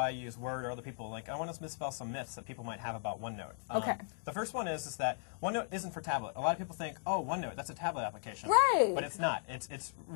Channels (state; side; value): silent; right; 53 dB below the other